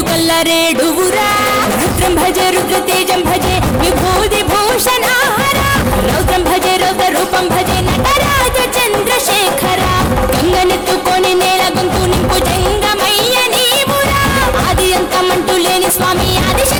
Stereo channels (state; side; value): identical; both; correlation 1.00